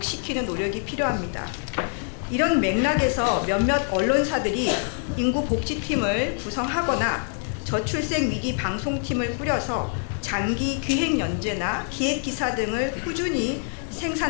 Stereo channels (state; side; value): silent; right; 59 dB below the other